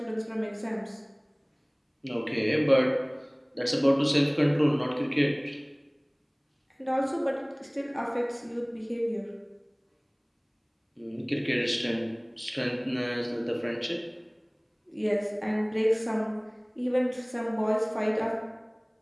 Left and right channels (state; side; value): identical; both; correlation 1.00